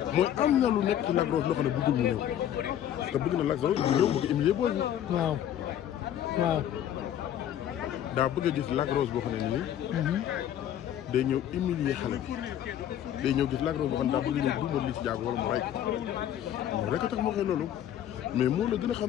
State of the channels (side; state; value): right; quieter; 10.8 dB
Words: mooy am na lu nekk ci Lac Rose loo xam ne bëggul mu ñëw parce que bëgg na Lac Rose bu ñëw bëgg humilier booy bi. waaw waaw. daa bëgg a gis Lac Rose boo xam ne nii. day ñëw humilier xale bi day ñëw gis Lac Rose boo xam ne daa bëgg ñëw duumal Liss Ndiago wala mu ray ko moom rek a tax moo koy loolu mais moo la gën a